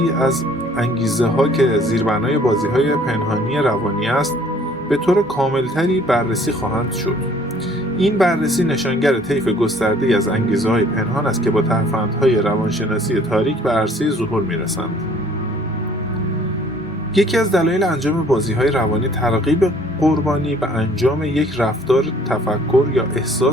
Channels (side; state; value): both; normal; correlation 0.56